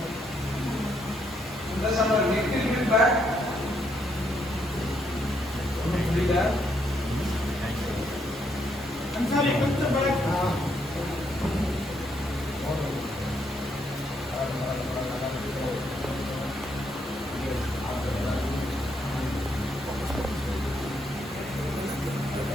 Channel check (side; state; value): both; normal; correlation 0.74